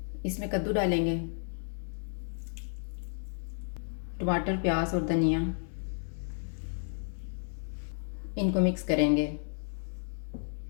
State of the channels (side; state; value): right; silent; digital silence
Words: इसमें कद्दू डालेंगे, टमाटर, प्याज और धनिया। इनको मिक्स करेंगे।